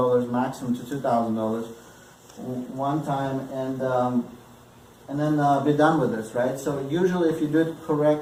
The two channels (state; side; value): identical; both; correlation 1.00